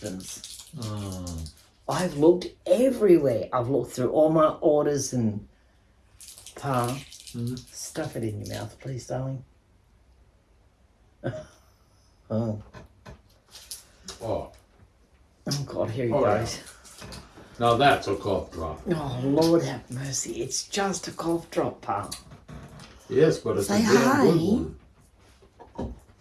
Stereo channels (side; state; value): both; identical; correlation 1.00